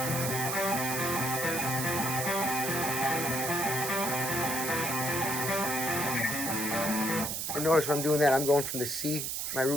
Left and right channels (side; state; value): right; noise; hiss, 2 dB below the sound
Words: And notice when I'm doing that, I'm going from the C, my